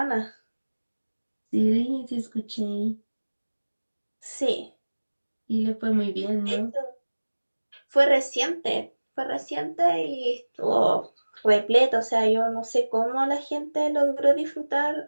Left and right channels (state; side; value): inverted; both; correlation -1.00